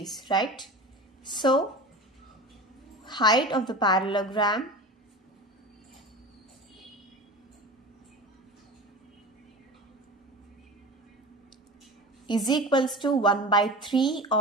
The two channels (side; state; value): both; normal; correlation 0.32